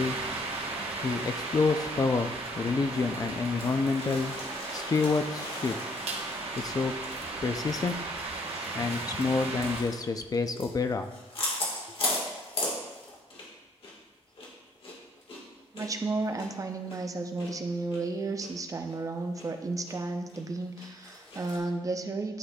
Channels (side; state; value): both; normal; correlation 0.66